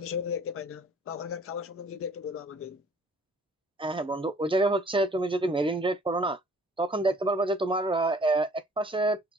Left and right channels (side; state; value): both; normal; correlation 0.55